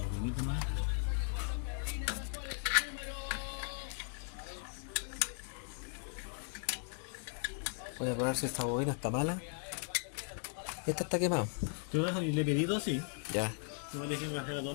poquito más. Voy a probar si esta bobina está mala. Esta está quemada. ¿Tú vas a le pedí dos? Sí. Ya. No le dije que fuera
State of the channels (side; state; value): right; silent; 53 dB below the other